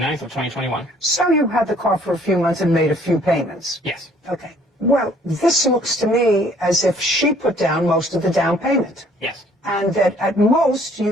of 2021. So you had the car for a few months and made a few payments. Yes. Okay. Well, this looks to me as if she put down most of the down payment. Yes. And that at most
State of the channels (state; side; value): normal; both; correlation 0.60